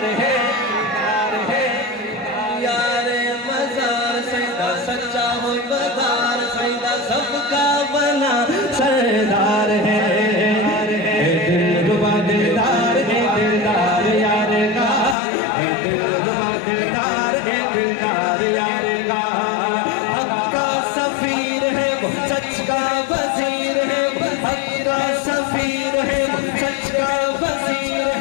है, गार है, यारे मजार सैदा सच्चा हो बदार सैदा सबका बना सरदार है, दिलरुबा दिलदार है दिलदार यार का, दिलरुबा दिलदार है दिलदार यार का, हक का सफीर है वो सच का वजीर है, हक का सफीर है वो सच का वजीर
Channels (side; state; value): right; drops out; at 15.2 s